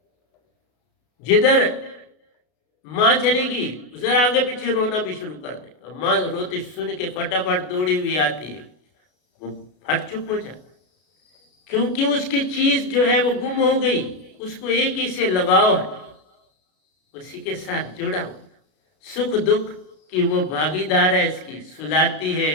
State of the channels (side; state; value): right; late; 33 ms